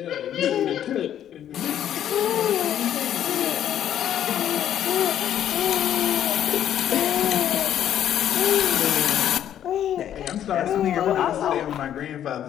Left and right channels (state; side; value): quieter; right; 10.6 dB